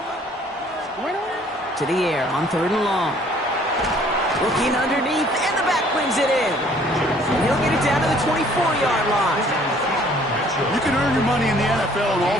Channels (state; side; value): normal; both; correlation 0.58